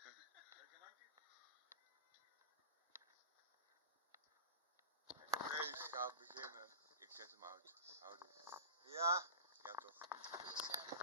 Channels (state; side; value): inverted; both; correlation -0.33